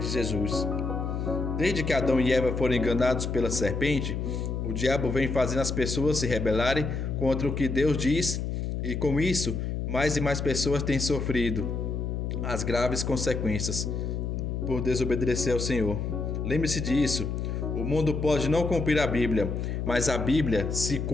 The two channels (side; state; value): left; noise; hum, 2 dB below the sound